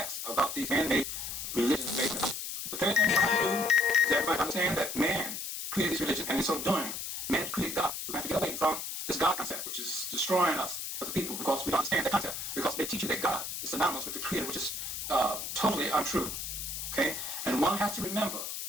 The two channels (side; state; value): left; noise; hiss, 5 dB below the sound